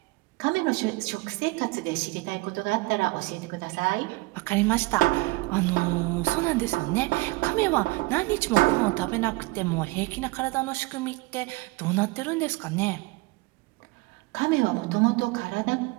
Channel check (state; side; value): quieter; left; 23.6 dB